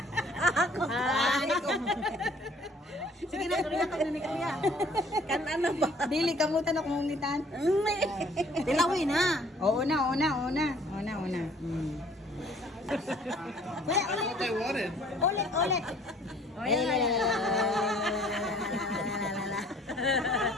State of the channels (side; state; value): both; normal; correlation 0.56